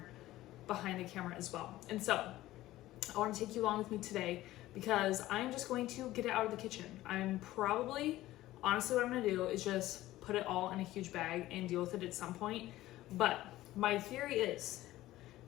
behind the camera as well. And so I want to take you along with me today because I'm just going to get it out of the kitchen. Honestly, what I'm going to do is just put it all in a huge bag and deal with it at some point. But my theory is,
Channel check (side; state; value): right; quieter; 15.9 dB